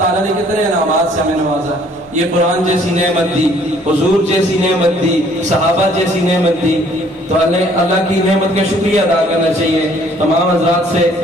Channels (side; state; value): both; normal; correlation 0.59